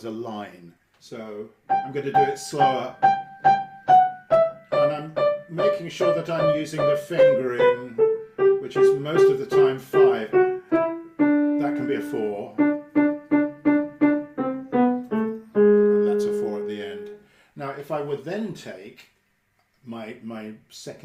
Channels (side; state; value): both; identical; correlation 1.00